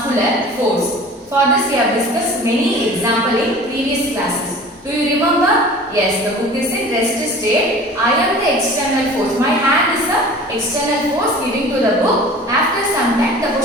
force. For this we have discussed many examples in previous classes. Do you remember? Yes, the book is in rest state. I am the external force. My hand is the external force giving to the book. After some time, the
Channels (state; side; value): normal; both; correlation 0.42